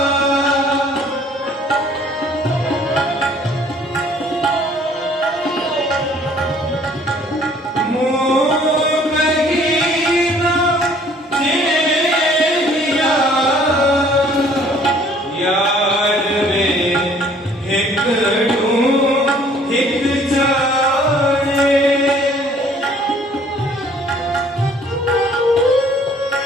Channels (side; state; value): both; normal; correlation 0.57